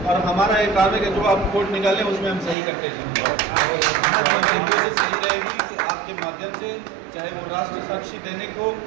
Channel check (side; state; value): left; drops out; at 2.6 s